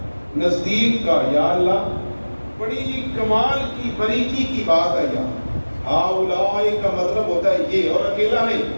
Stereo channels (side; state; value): both; inverted; correlation -1.00